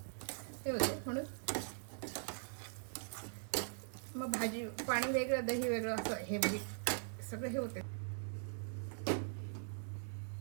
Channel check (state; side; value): silent; left; digital silence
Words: हे होते. म्हणून मग भाजी पाणी वेगळं दही वेगळं असं हे बघी सगळं हे होते.